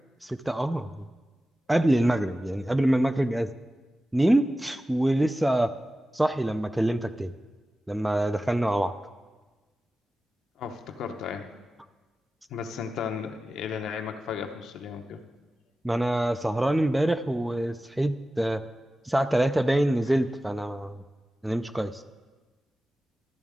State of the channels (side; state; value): both; normal; correlation 0.95